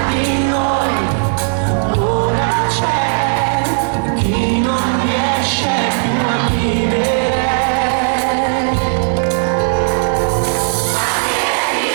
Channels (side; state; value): left; silent; digital silence